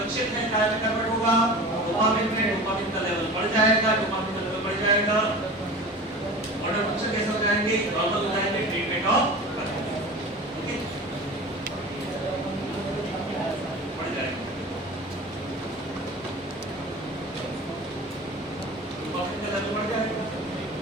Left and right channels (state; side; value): normal; both; correlation 0.35